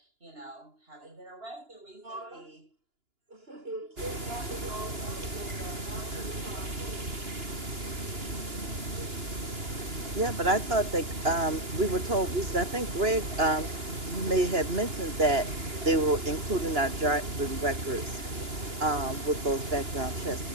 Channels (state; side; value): late; left; 2.9 ms